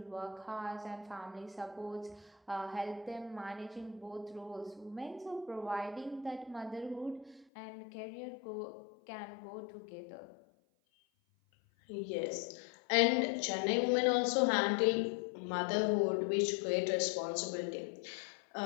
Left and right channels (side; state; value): right; drops out; at 7.5 s